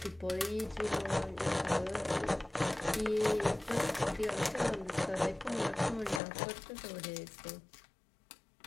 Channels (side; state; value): right; drops out; at 6.2 s